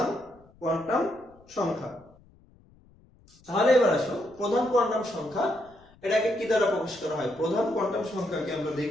কোয়ান্টাম সংখ্যা। তাহলে এবার আসো, প্রধান কোয়ান্টাম সংখ্যা এটাকে কি দ্বারা প্রকাশ করা হয়? প্রধান কোয়ান্টাম সংখ্যাকে আমরা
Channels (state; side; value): noise; left; rumble, 28 dB below the sound